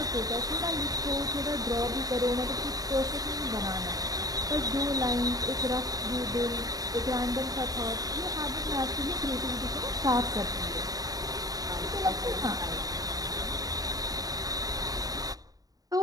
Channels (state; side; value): late; left; 0.18 ms